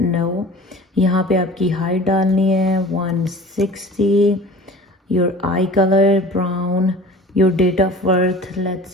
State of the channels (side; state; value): both; normal; correlation 0.42